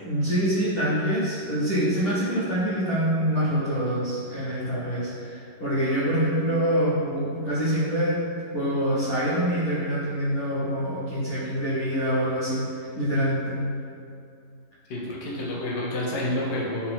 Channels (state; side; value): late; right; 11 ms